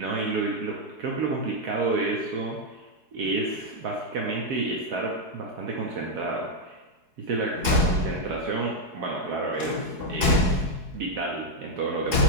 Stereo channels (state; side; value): late; left; 4.7 ms